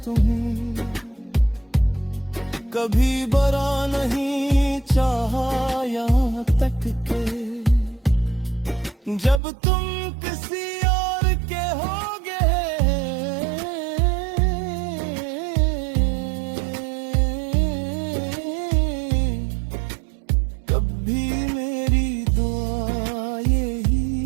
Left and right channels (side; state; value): left; drops out; at 9.4 s